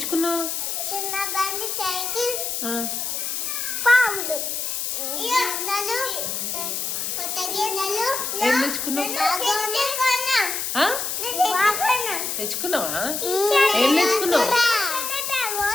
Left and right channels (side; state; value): left; noise; hiss, 2 dB below the sound